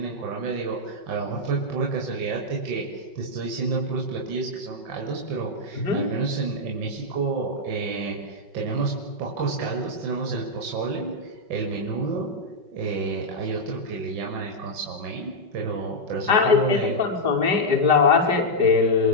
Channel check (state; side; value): late; left; 5.4 ms